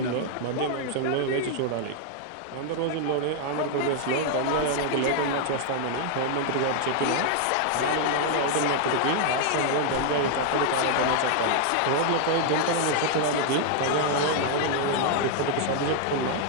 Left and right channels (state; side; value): different; both; correlation 0.00